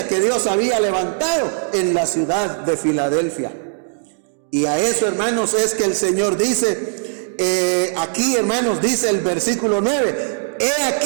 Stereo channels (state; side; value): silent; left; digital silence